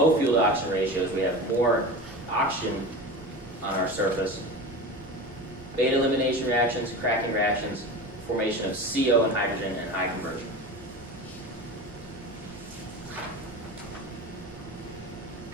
fuel to oxygen ratios, we have more oxygen on our surface, beta elimination reactions, cracking reactions, formation of CO and hydrogen, and high conversion.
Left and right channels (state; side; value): normal; both; correlation 0.30